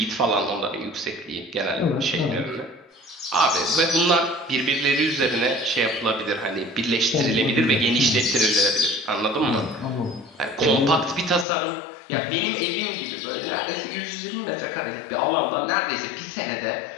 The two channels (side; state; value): right; drops out; at 11.5 s